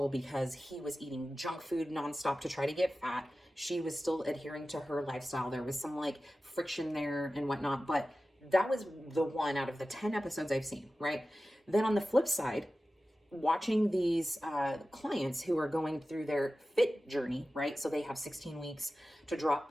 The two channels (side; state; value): both; normal; correlation 0.95